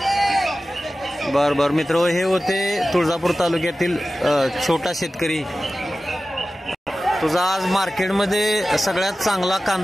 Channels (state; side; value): normal; both; correlation 0.95